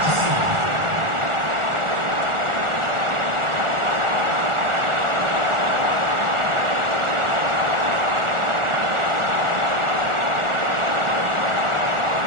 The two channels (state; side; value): late; left; 1.4 ms